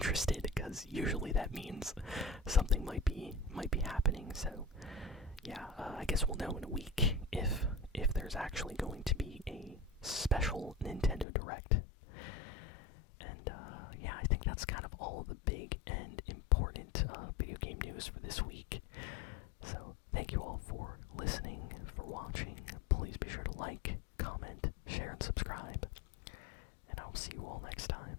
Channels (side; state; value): right; drops out; at 11.2 s